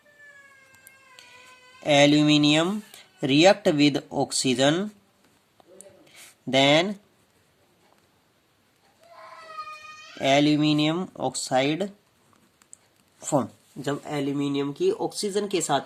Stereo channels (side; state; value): both; identical; correlation 1.00